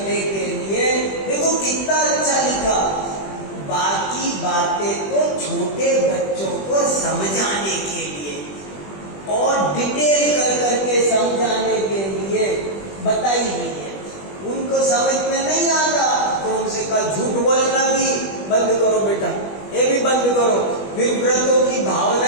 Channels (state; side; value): late; right; 20 ms